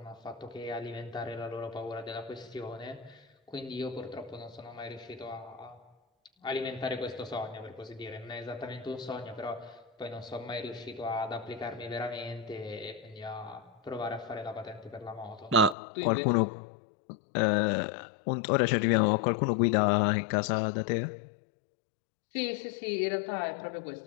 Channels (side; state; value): right; drops out; at 15.8 s